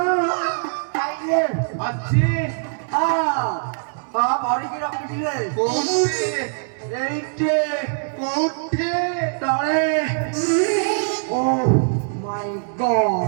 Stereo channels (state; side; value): silent; left; digital silence